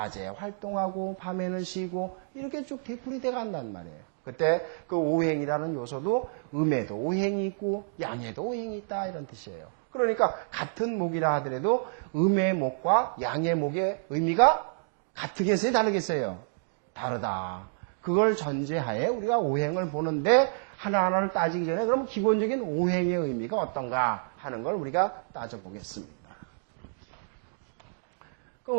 활동하고 밤에는 쉬고 이렇게 쭉 되풀이 돼 간단 말이에요. 그때 그 오행이라는 요소도 음에도 오행이 있고 양에도 오행이 있다, 이런 뜻이에요. 그러니까 같은 목이라 하더라도 음의 목과 양의 목의 의미가 같으겠어요, 다르겠어요? 다르다. 그걸 전제하에 우리가 오행을 보는데, 하나하나를 따지기 전에 그럼 기본적인 오행의 의미가 어떤가 하는 걸 우리가 따져보겠습니다.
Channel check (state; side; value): silent; left; digital silence